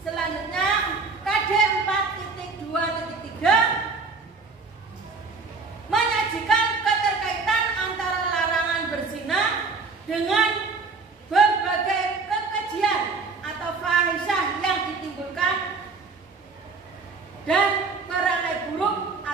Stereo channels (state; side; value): quieter; left; 4.3 dB